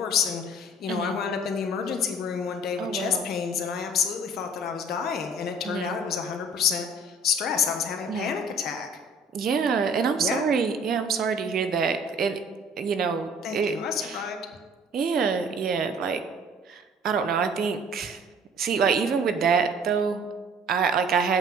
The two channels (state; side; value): normal; both; correlation 0.51